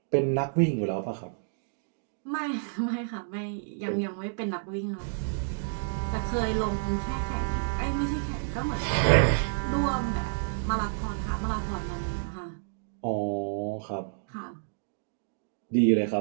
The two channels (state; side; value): silent; left; digital silence